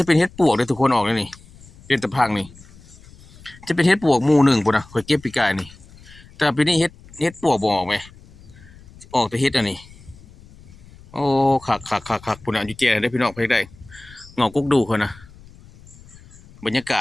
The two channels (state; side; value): noise; left; rumble, 22 dB below the sound